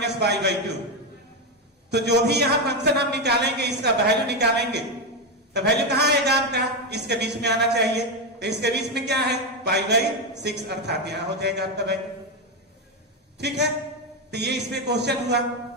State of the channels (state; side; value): normal; both; correlation 0.09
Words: तो जो भी यहां फंक्शन हम निकालेंगे इसका वैल्यू निकालेंगे, तो वैल्यू कहां आएगा आपका, इसके बीच में आना चाहिए। तो इसके बीच में क्या है π/6, अर्थात यहां हो जाएगा आपका वैल्यू। ठीक है, तो ये इसमें क्वेश्चन हुआ।